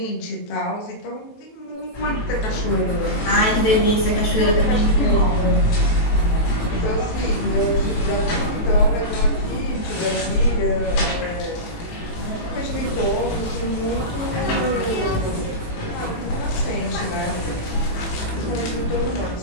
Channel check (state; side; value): late; right; 18 ms